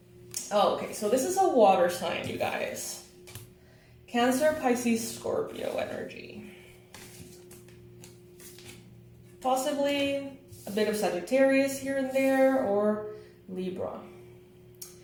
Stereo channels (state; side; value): identical; both; correlation 1.00